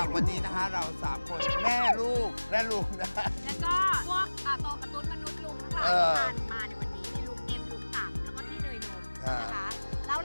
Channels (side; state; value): both; inverted; correlation -1.00